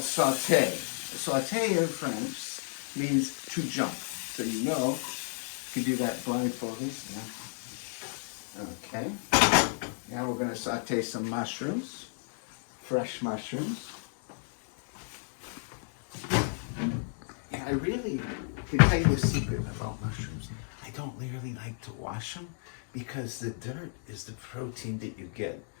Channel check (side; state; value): right; silent; digital silence